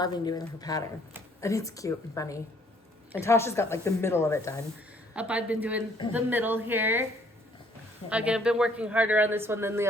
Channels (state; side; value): normal; both; correlation 0.62